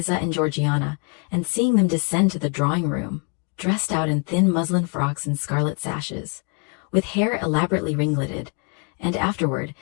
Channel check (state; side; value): quieter; right; 37.2 dB